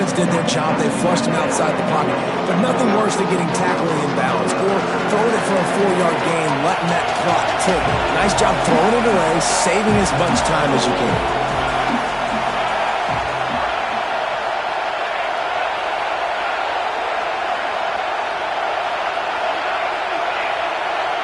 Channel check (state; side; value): identical; both; correlation 1.00